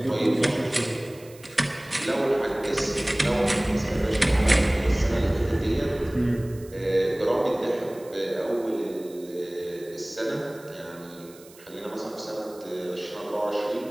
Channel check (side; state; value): right; noise; hiss, 23 dB below the sound